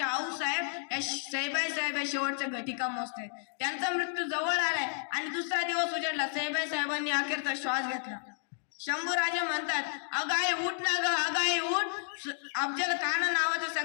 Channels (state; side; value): silent; right; digital silence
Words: आऊसाहेब या सईबाई या शेवटच्या घटिका मोजतात. त्यांचा मृत्यू जवळ आलाय आणि दुसरा दिवस उजाडला. सईबाई साहेबांनी अखेरचा श्वास घेतला. शंभू राजा म्हणतात, अगाई उठ ना ग, अगाई उठ. अफजल खान नावाचं